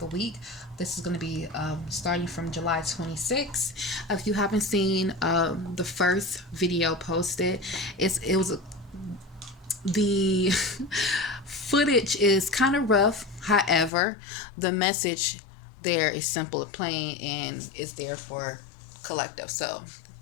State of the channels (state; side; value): drops out; right; at 13.9 s